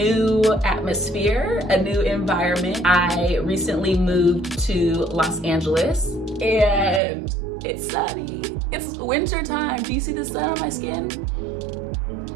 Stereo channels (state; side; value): drops out; left; at 7.0 s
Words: atmosphere, a new environment. I recently moved to Los Angeles and it's sunny. It's winter time. Do you see the sun on my skin?